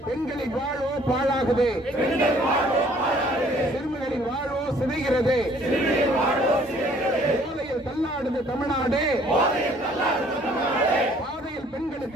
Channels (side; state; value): both; normal; correlation 0.59